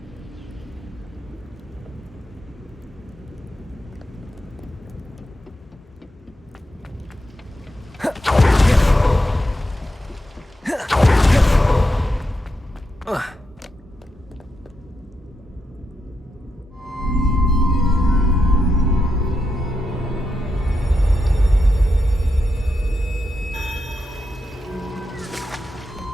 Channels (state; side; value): normal; both; correlation 0.85